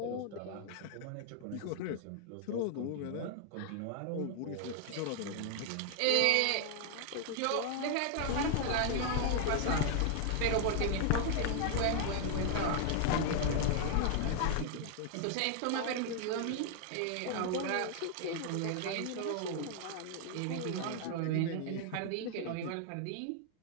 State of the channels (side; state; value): both; different; correlation 0.00